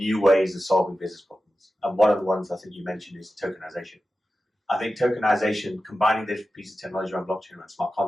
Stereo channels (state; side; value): normal; both; correlation 0.93